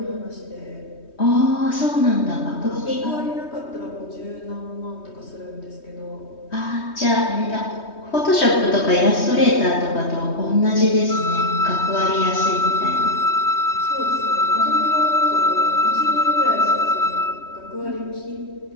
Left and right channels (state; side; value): late; right; 3.2 ms